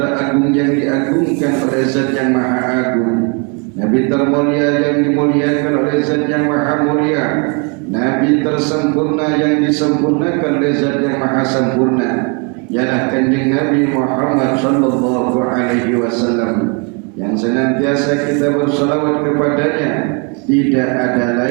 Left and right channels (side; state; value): left; quieter; 35.0 dB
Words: yang diagungkan oleh Zat yang Maha Agung, Nabi termulia yang dimuliakan oleh Zat yang Maha Mulia, Nabi tersempurna yang disempurnakan oleh Zat yang Maha Sempurna, ialah Kanjeng Nabi Muhammad sallallahu alaihi wasallam, yang senantiasa kita bersalawat kepadanya. Tidak ada